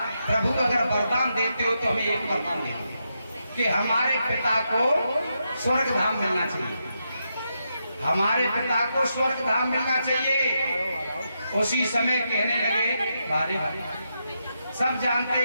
प्रभु अगर वरदान देते हो तो हमें एक वरदान दे कि हमारे पिता को स्वर्ग धाम मिलना चाहिए, हमारे पिता को स्वर्ग धाम मिलना चाहिए। उसी समय कहने लगे बारे बारे सब जानते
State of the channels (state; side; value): inverted; both; correlation -0.84